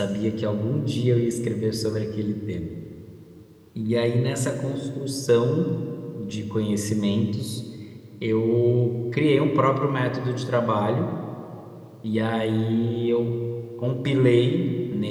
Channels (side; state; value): both; identical; correlation 1.00